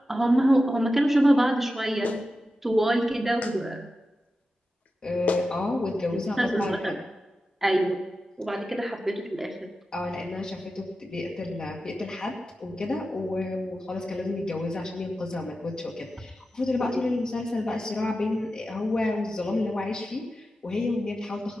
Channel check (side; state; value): both; normal; correlation 0.92